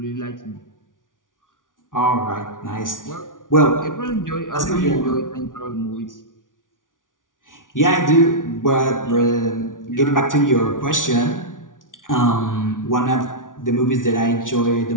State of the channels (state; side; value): late; right; 0.88 ms